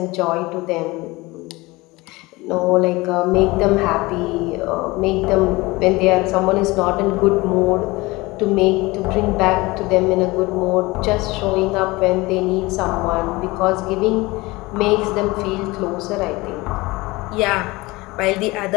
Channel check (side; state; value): right; quieter; 22.0 dB